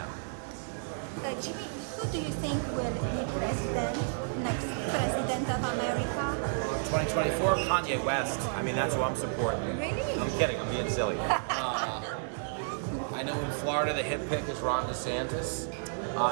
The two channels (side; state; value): left; silent; digital silence